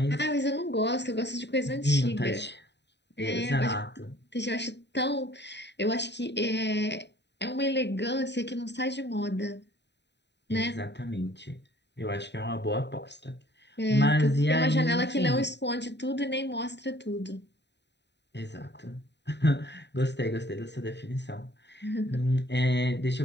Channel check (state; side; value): late; right; 0.50 ms